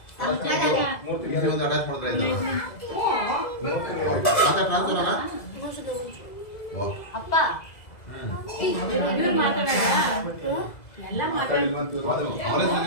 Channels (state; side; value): late; right; 2.0 ms